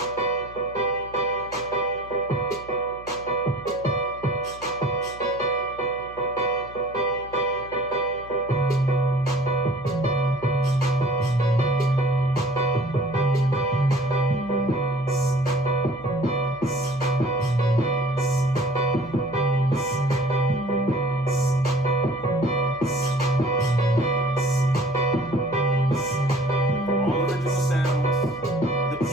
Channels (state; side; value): noise; right; hum, 21 dB below the sound